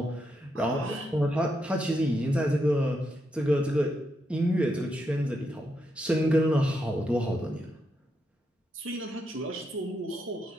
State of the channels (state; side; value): normal; both; correlation 0.82